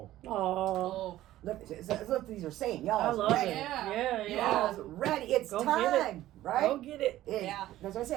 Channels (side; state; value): left; quieter; 14.6 dB